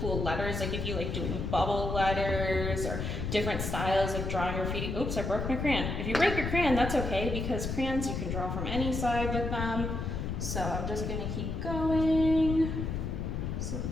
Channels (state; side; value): noise; left; rumble, 3 dB below the sound